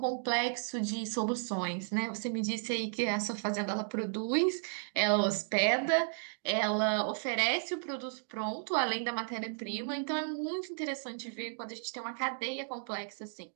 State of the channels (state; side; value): silent; left; digital silence